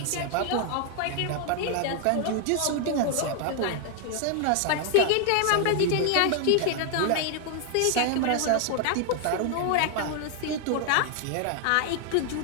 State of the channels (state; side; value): different; both; correlation 0.00